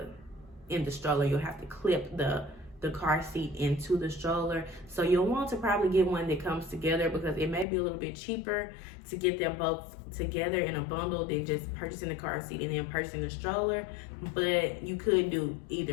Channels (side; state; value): right; drops out; at 7.7 s